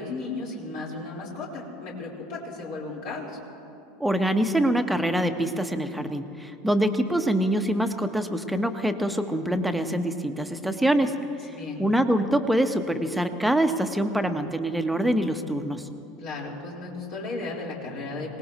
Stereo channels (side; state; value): both; normal; correlation 0.78